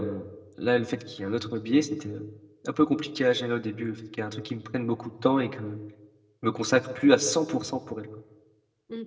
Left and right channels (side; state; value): both; identical; correlation 1.00